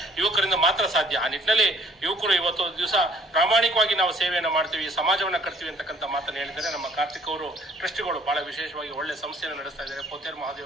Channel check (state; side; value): normal; both; correlation 0.58